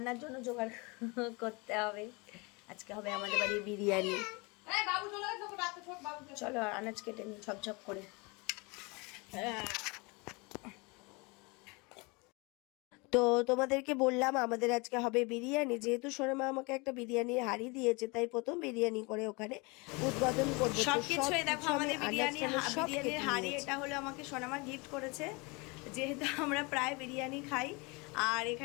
জন্য জোগাড় করতে হবে। আজকে হবে আমাদের বাড়ি বিরিয়ানি। চলো আনাজ কেটে নিই ঝপঝপ করে। তো তোমাদেরকে বললাম আমাদের আজকে হবে বিরিয়ানি। যেহেতু সোনামা আমাকে একটা বিরিয়ানির হাঁড়ি দিয়েছে, তাই প্রথম বিরিয়ানি করে ওখানে উদ্বোধন করবো। সবকিছুই দেখো আমাদের বিরিয়ানির হাঁড়ি, এটা হলো আমাকে সোনামা গিফট করেছে, যেহেতু আমরা প্রায় বিরিয়ানি খাই। আর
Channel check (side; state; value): right; quieter; 27.9 dB